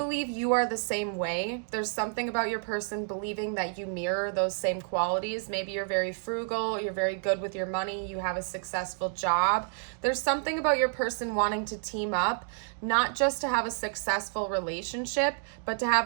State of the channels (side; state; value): left; silent; 58 dB below the other